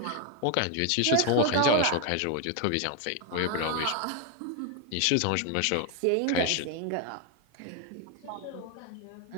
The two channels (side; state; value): both; different; correlation 0.00